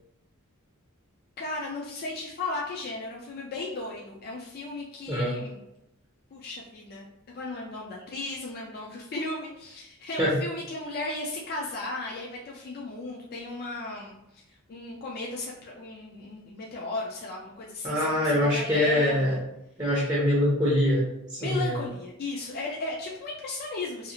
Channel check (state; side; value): normal; both; correlation 0.37